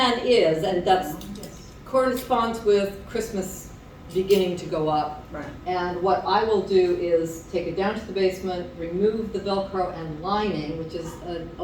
is, and that corresponds with Christmas beginning to go up. Right. And what I will do is take it down to the basement, remove the Velcro and lining, which is an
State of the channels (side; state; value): both; identical; correlation 1.00